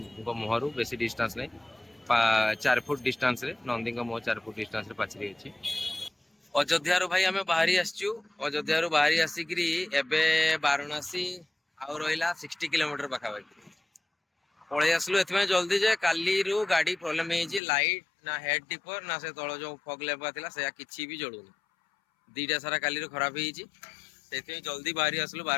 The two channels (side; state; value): right; drops out; at 17.6 s